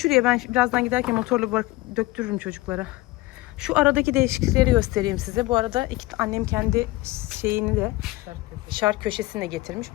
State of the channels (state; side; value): quieter; right; 19.4 dB